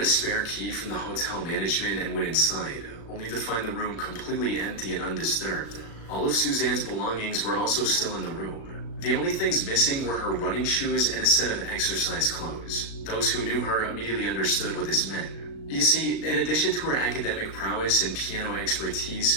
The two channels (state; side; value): late; right; 36 ms